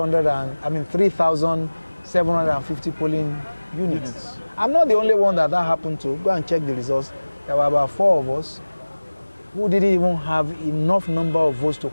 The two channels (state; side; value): inverted; both; correlation -1.00